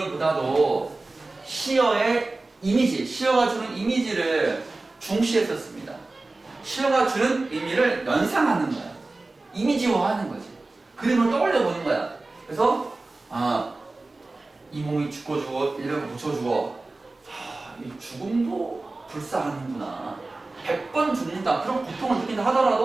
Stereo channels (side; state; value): left; quieter; 3.2 dB